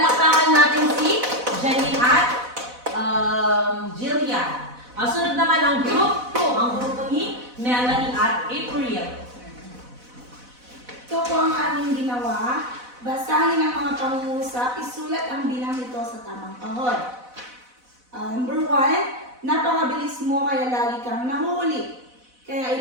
natin si Janine at Jillian. Ang sunod naman ang group 2, ang grupo ni Melanie at April. Ito po ang aming ginawa. Basahin ang mga pangungusap, isulat ang bilang nito sa tamang kahon. Number 1, napakabilis mo kaya lagi kang nahuli. Kaya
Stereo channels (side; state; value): left; late; 4.0 ms